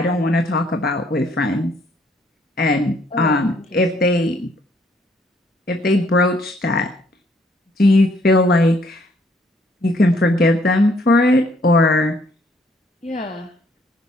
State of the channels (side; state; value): both; normal; correlation 0.66